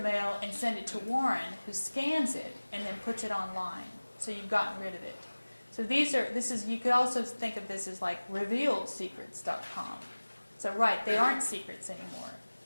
and send it to Warren, who scans it and then puts it online. So you've gotten rid of it. So you could also think of this as like revealedsecrets.com. So right, they aren't secrets anymore.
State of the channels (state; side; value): inverted; both; correlation -1.00